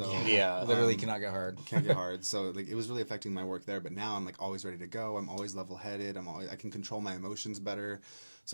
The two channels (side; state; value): both; inverted; correlation -1.00